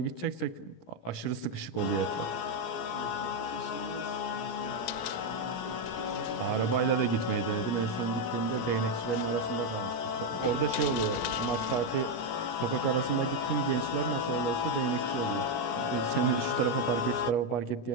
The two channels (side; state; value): right; late; 17 ms